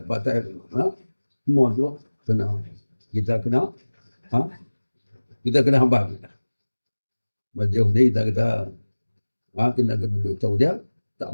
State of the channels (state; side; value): inverted; both; correlation -1.00